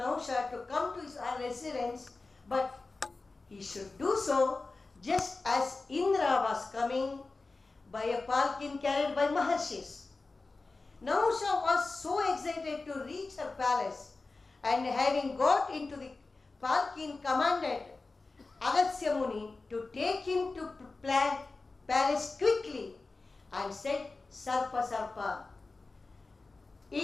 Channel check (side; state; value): right; quieter; 3.6 dB